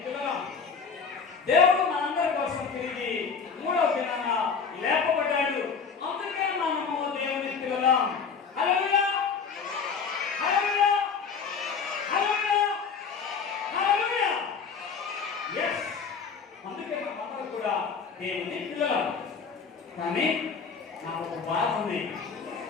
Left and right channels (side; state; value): right; quieter; 5.8 dB